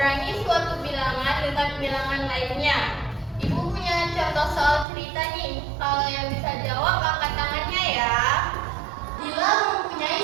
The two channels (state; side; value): drops out; left; at 4.9 s